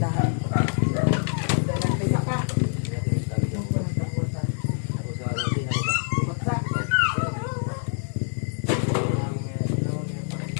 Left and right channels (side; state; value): right; silent; 60 dB below the other